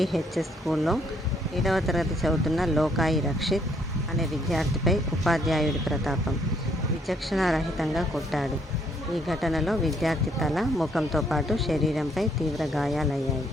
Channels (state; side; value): normal; both; correlation 0.68